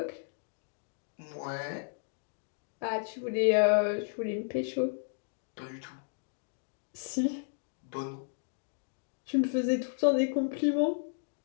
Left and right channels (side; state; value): right; silent; digital silence